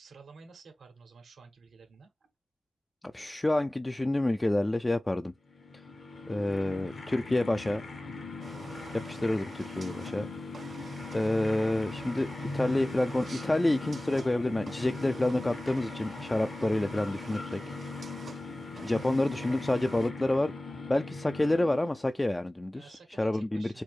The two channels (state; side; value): normal; both; correlation 0.98